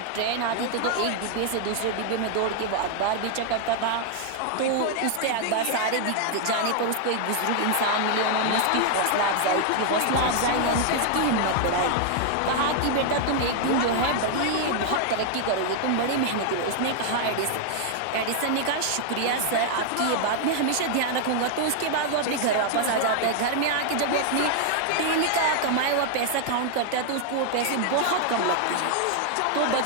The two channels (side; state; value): both; different; correlation 0.00